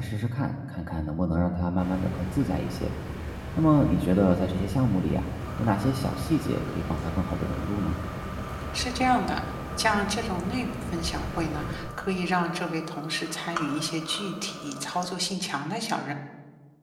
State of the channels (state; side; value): identical; both; correlation 1.00